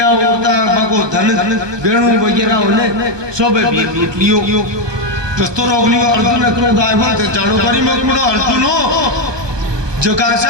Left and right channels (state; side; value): late; left; 1.2 ms